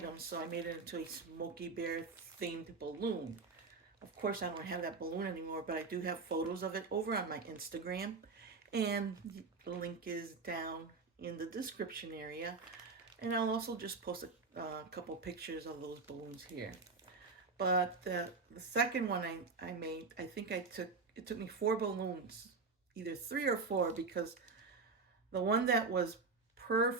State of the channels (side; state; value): left; quieter; 4.3 dB